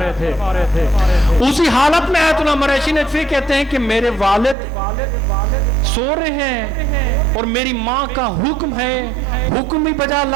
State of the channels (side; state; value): left; drops out; at 4.5 s